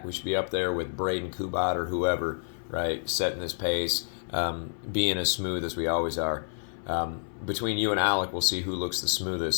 We should be up there with Braden Kubat or whoever, right, setting this pace, being as smooth as we always are. Between you and Alec, we'll see who looks the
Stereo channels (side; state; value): right; silent; 58 dB below the other